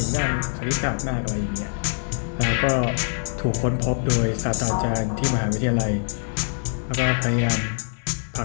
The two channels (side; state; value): right; silent; digital silence